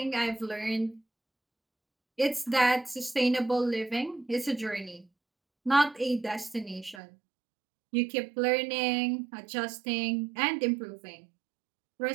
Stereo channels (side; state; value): left; drops out; at 7.0 s